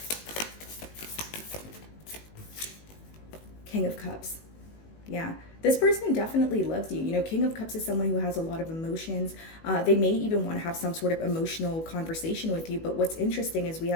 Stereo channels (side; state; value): right; late; 19 ms